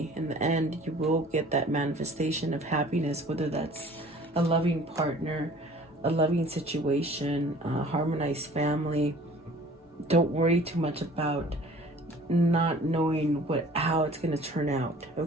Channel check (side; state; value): both; normal; correlation 0.49